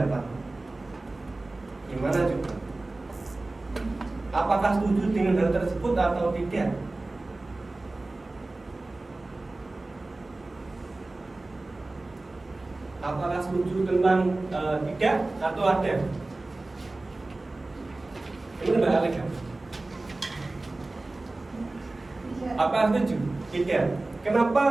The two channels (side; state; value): left; quieter; 3.0 dB